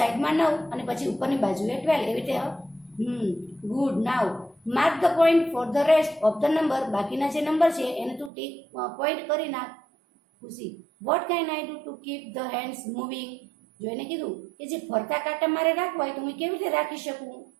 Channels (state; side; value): drops out; left; at 8.3 s